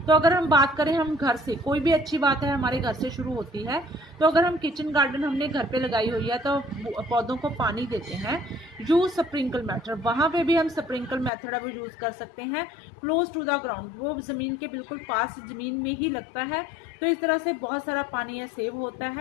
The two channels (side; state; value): right; drops out; at 11.3 s